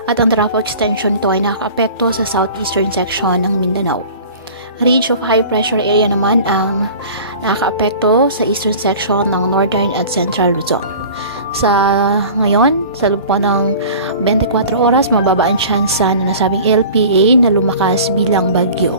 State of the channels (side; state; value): both; inverted; correlation -0.42